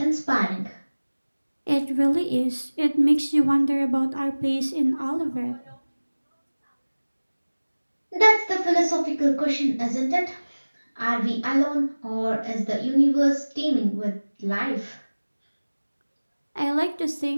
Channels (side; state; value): both; inverted; correlation -1.00